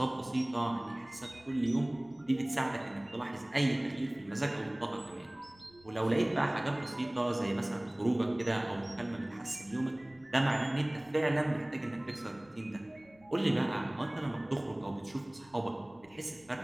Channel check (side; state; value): left; noise; rumble, 28 dB below the sound